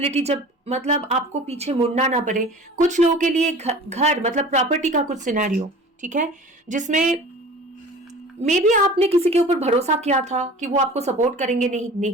जब मतलब आपको पीछे मुड़ना ना पड़े। कुछ लोगों के लिए घर मतलब प्रॉपर्टी का कुछ सिनेरियो, ठीक है, जिसमें मे बी आपने किसी के ऊपर भरोसा किया था कि वो आपको सपोर्ट करेंगे,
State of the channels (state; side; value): normal; both; correlation 0.42